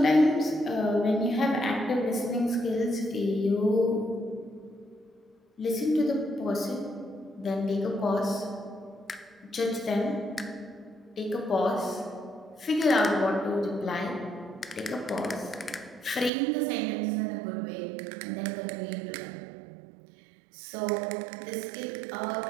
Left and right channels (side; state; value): left; drops out; at 16.3 s